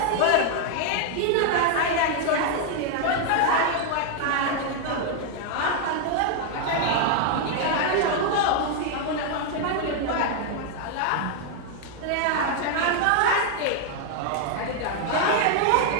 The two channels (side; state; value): both; different; correlation 0.00